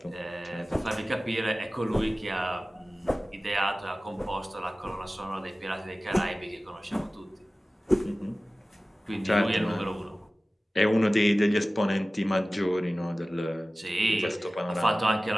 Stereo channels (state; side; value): normal; both; correlation 0.97